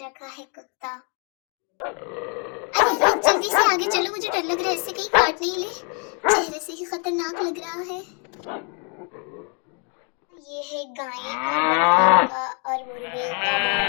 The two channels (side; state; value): right; quieter; 37.2 dB